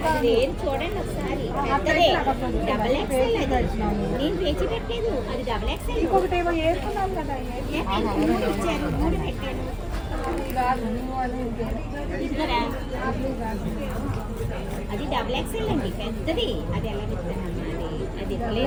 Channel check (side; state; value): both; identical; correlation 1.00